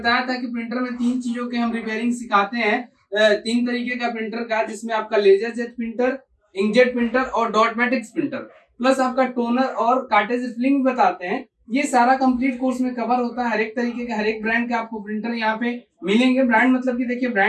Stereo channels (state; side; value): identical; both; correlation 1.00